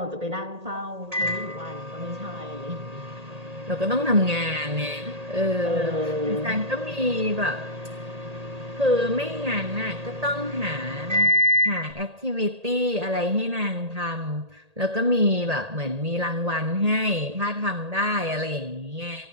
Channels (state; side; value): late; left; 1.8 ms